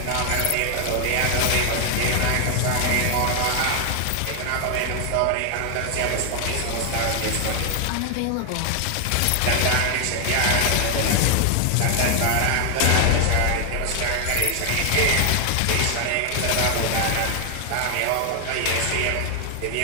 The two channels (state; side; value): different; both; correlation 0.00